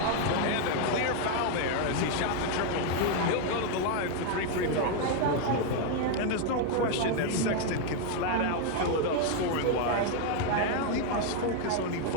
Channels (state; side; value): different; both; correlation 0.00